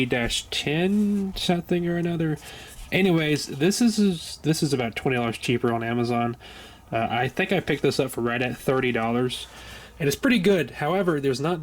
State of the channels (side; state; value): both; identical; correlation 1.00